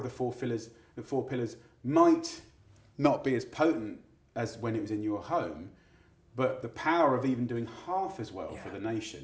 the 4 pillars might not be as potent as when it was in your home, but the power of even doing half as well for the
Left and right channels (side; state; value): both; identical; correlation 1.00